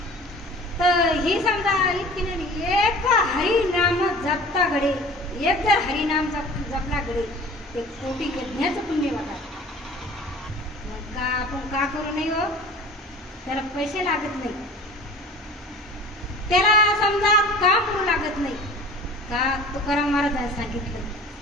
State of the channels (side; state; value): both; normal; correlation 0.43